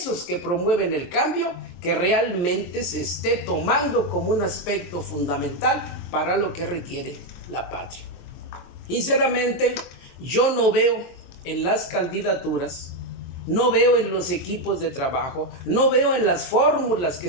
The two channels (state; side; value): late; right; 23 ms